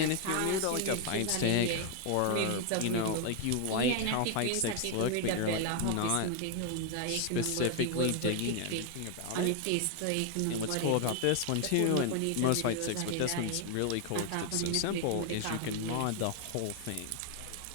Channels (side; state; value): both; different; correlation 0.00